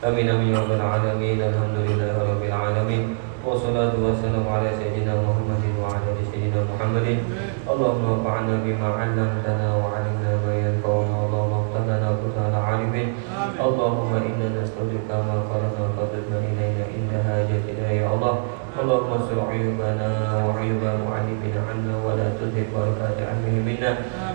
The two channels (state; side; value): silent; left; digital silence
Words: Amin amin ya rabbal alamin. Alhamdulillahirabbil alamin. Wassalatu wassalamu ala sayyidina Muhammadin wa ala ali sayyidina Muhammadin. Allahumma fa'alna bima 'allamtana wa 'allimna ma yanfa'una. Allahumma ighfir lana alimin. Allahumma inna nas'aluka ma qara'na fadlna ilayna inda hajatina ya Allah. Allahumma sur uyubana wa uyuba mu'allimina 'anna wa la tuzigh barakata 'ilmina.